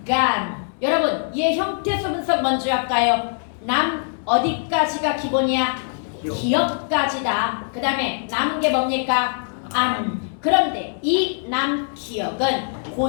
여러분 얘 형태수 분석 먼저 할까요? 남 어디까지가 기본이야? 기억까지다. 그 다음에 남은 게 뭡니까? 안. 그런데 이 남기억은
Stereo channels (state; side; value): silent; right; digital silence